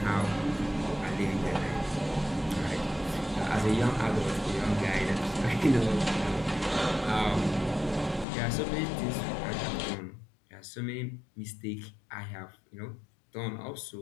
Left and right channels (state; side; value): drops out; right; at 8.2 s